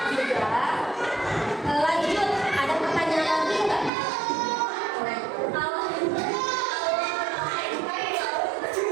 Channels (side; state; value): left; drops out; at 3.9 s